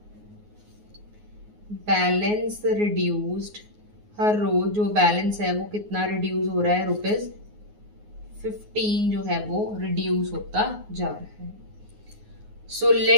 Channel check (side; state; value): left; late; 9.5 ms